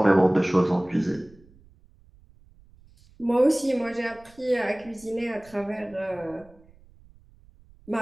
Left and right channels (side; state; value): right; noise; rumble, 27 dB below the sound